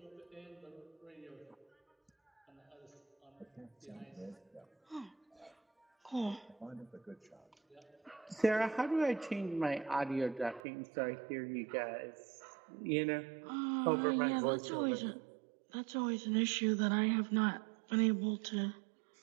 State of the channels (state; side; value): drops out; left; at 10.6 s